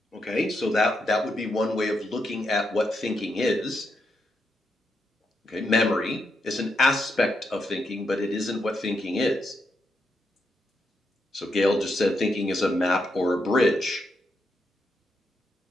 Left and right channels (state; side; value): normal; both; correlation 0.82